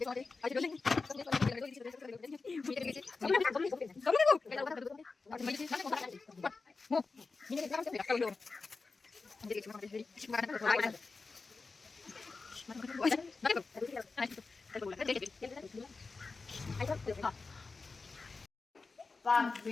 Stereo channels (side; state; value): right; quieter; 4.1 dB